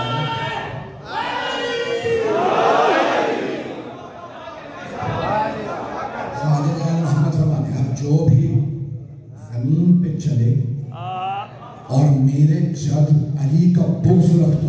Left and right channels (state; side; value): identical; both; correlation 1.00